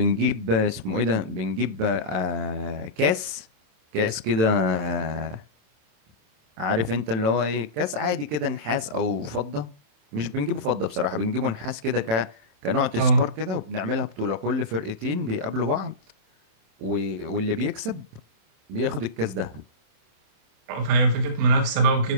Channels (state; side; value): late; left; 27 ms